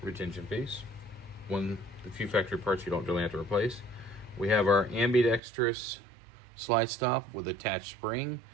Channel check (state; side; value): drops out; left; at 5.4 s